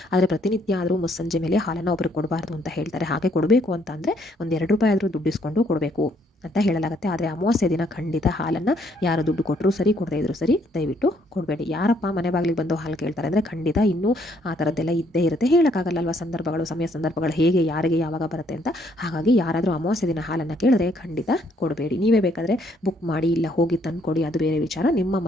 ಆದರೆ ಪ್ರತಿನಿತ್ಯ ಆದರೂ ಮುಸ್ಸಂಜೆ ಮೇಲೆ ಹಾಲನ್ನು ಒಬ್ರಿಗೆ ಕೊಡಬಾರ್ದು ಅಂತ ಹೇಳ್ತಾರೆ. ಹಾಗೆ ಕೊಡಬೇಕು ಅಂತ ಅಂದರೆ ಒಂದು 2 ರೂಪಾಯಿ ಆದರೂ ದುಡ್ಡಿಸ್ಕೊಂಡು ಕೊಡಬೇಕು ಅಂತ ಹೇಳಲಾಗುತ್ತೆ. ಆದರೆ ಅಮಾವಾಸ್ಯೆ ದಿನ ಖಂಡಿತ ಹಾಲನ್ನು ಯಾರು ದುಡ್ಡು ಕೊಟ್ಟರು ಸರಿ, ಕೊಡದೇ ಇದ್ರು ಸರಿ, ದಯವಿಟ್ಟು ಕೊಡಬೇಡಿ. ಯಾರಪ್ಪ ಮನೆ ಬಾಗಿಲಿಗೆ ಬಂದು ಹಾಲು ಕೇಳ್ತಾರೆ ಅಂದರೆ ಖಂಡಿತ ಇನ್ನೂ ಆ ಥರದ್ದೆಲ್ಲ ಇದ್ದೇ ಇರುತ್ತೆ. ಹೇಳೋಕ್ಕಾಗಲ್ಲಲ್ವ, ಸಮಯ ಸಂದರ್ಭಗಳು ಹೇಗೆ ಯಾರಿಗೆ ಯಾವಾಗ ಬರುತ್ತೆ ಅಂತ. ಹಾಗಾಗಿ ಯಾರಾದರೂ ಅಮಾವಾಸ್ಯೆ ದಿನ ಹಾಲನ್ನು ಕೇಳಿದ್ರೆ ಖಂಡಿತ ಕೊಡಬೇಡಿ. ನೀವೇ ಬೇಕಾದರೆ ಬುಕ್ ಮಾಡಿ ಇಲ್ಲ ಹೋಗಿ ತಂದುಕೊಡಿ, ಅದು ಬೇರೆ ವಿಚಾರ. ನಿಮ್ಮ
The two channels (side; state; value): both; normal; correlation 0.68